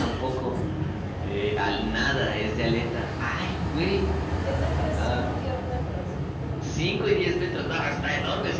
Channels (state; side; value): identical; both; correlation 1.00